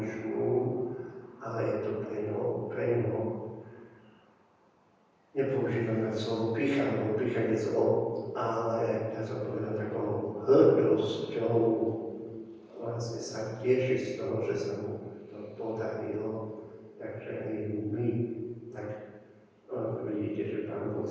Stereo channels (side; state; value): both; identical; correlation 1.00